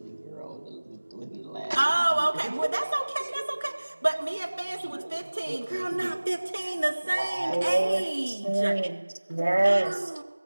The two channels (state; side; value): inverted; both; correlation -1.00